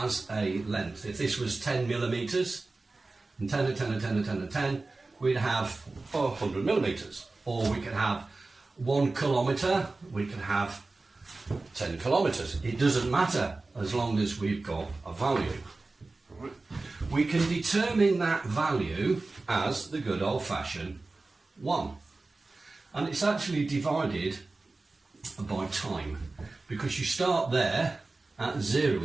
a length, if this was 10 millimetres, and 10 and 10 and 10 and 10 and 10, we'd have 100 millimetres. Or we could have 1 kilometre, we could have 10 kilometres. It doesn't matter as long as we've got a value. We can determine that value as the good old-fashioned 1. And it's actually divided by time, because you start there at 0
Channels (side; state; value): left; quieter; 3.4 dB